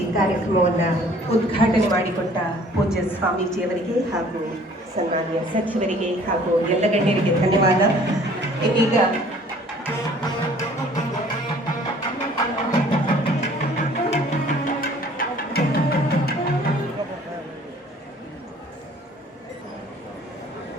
ಕಾರ್ಯಕ್ರಮವನ್ನು ಉದ್ಘಾಟನೆ ಮಾಡಿಕೊಟ್ಟ ಪೂಜ್ಯ ಸ್ವಾಮೀಜಿಯವರಿಗೆ ಹಾಗೂ ಸನ್ಮಾನ್ಯ ಸಚಿವರಿಗೆ ಹಾಗೂ ಎಲ್ಲ ಗಣ್ಯರಿಗೆ ಧನ್ಯವಾದ. ಇದೀಗ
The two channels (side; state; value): both; normal; correlation 0.54